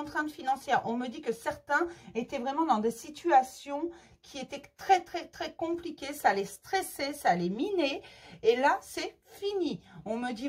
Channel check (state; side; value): identical; both; correlation 1.00